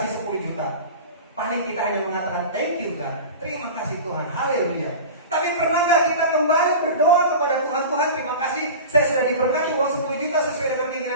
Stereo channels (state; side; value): inverted; both; correlation -0.33